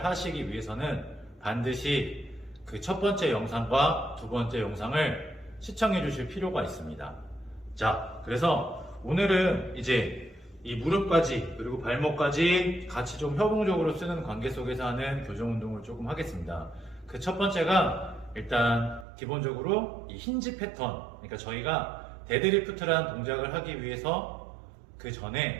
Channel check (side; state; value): left; drops out; at 19.1 s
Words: 하시기 위해서는 반드시 그 첫 번째 영상과 두 번째 영상을 시청해 주실 필요가 있습니다. 자, 그래서 오늘은 이제 이 무릎까지 그리고 발목까지 같이 좀 협동적으로 쓰는 관계 속에서 하는 교정 운동을 조금 하겠습니다. 그 첫 번째가 일단 기본적으로 이 힌지 패턴, 그러니까 저희가 데드리프트라는 동작을 하기 위해서 그 전에